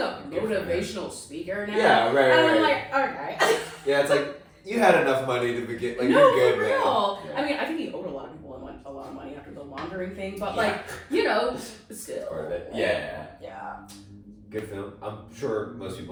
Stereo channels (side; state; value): both; identical; correlation 1.00